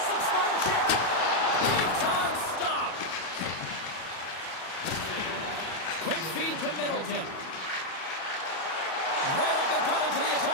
Slips by the check. Big time stop. Quick feed to Middleton. Right up the gut into the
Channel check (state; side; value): late; right; 37 ms